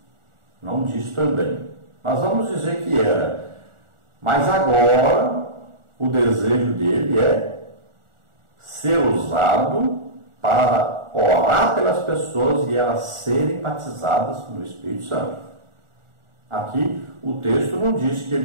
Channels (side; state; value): left; late; 1.4 ms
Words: Não diz também. Mas vamos dizer que era. Mas agora o desejo dele é ser usado para orar pelas pessoas e elas serem batizadas no Espírito Santo. Aqui o texto não diz que